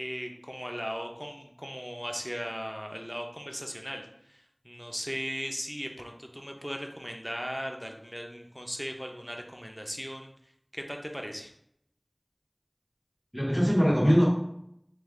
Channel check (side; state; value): both; identical; correlation 1.00